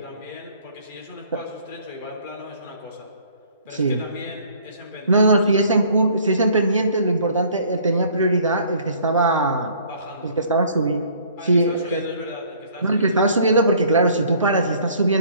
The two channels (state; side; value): inverted; both; correlation -0.56